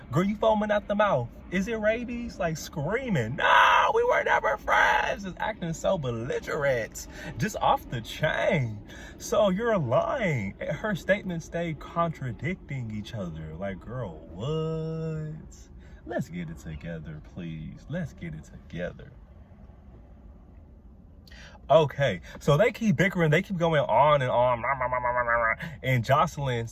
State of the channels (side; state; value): both; identical; correlation 1.00